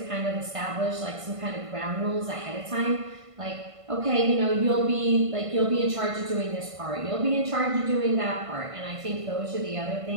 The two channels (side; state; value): left; late; 1.5 ms